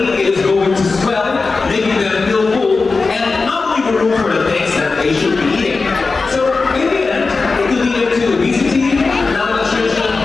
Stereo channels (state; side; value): quieter; right; 4.1 dB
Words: is going to swell, making them feel full, and not leave room for the things that they should be eating. So in the end, it could lead to obesity, malnutrition,